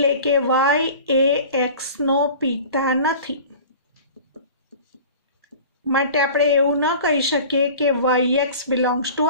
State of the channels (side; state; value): both; inverted; correlation -0.40